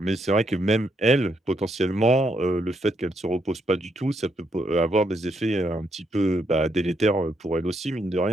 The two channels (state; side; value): normal; both; correlation 0.76